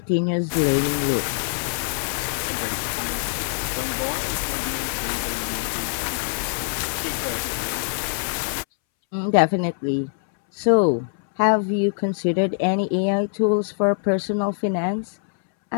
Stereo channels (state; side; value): silent; right; 63 dB below the other